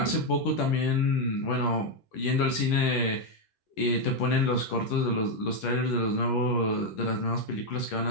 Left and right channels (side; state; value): right; late; 10 ms